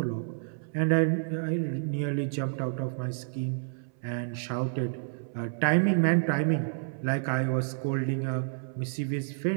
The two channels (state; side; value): silent; left; 58 dB below the other